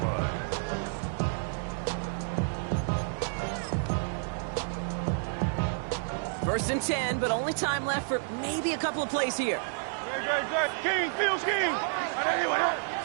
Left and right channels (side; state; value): left; silent; 58 dB below the other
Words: line. 1st and 10, but only time left for maybe a couple of plays here. King, Field King.